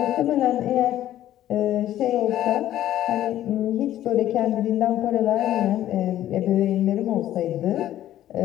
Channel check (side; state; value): right; quieter; 12.7 dB